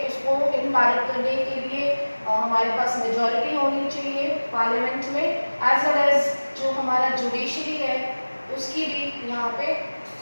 उसको इनवैलिड करने के लिए हमारे पास मेजॉरिटी होनी चाहिए पार्लियामेंट में, एज वेल एज जो हमारा जुडिशरी है उसकी भी यहाँ पे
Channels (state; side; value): inverted; both; correlation -1.00